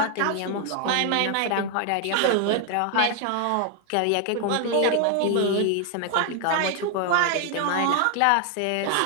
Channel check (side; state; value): both; different; correlation 0.00